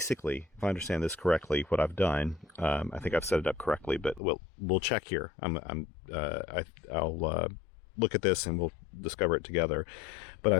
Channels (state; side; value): drops out; right; at 4.2 s